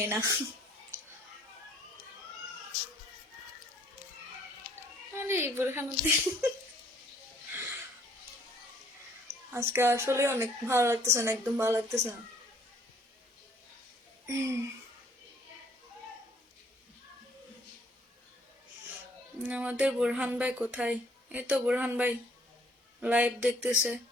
না। আরে বুরহানুদ্দিন, আজকে আসলে অনেক ভালো লাগতেছে না, একদম ভালো লাগতেছে না। আমাদের বুরহান ভাই কোথায়? এই তো বুরহান ভাই লাইভ দেখতেছে,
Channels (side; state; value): both; normal; correlation 0.61